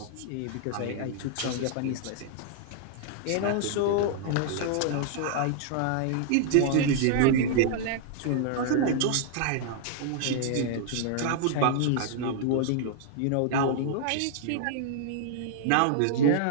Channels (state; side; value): different; both; correlation -0.01